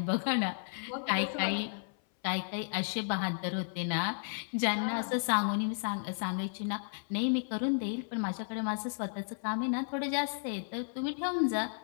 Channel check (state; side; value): silent; right; 56 dB below the other